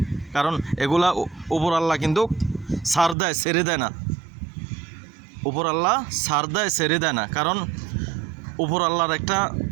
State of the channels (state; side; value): drops out; left; at 3.2 s